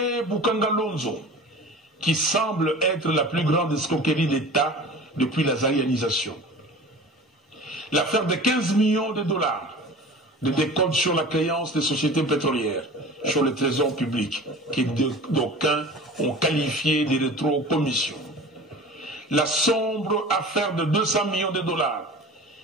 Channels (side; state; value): both; normal; correlation 0.39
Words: Boukangalonzo, qui semble être la plus grande escroquerie d'État depuis la zaïanisation. L'affaire de 15 millions de dollars de décompte sur la créance des sociétés pétrolières, sur le trésor public, que d'aucuns ont qualifié de rétro-commission. La sombre affaire de 200 millions de dollars,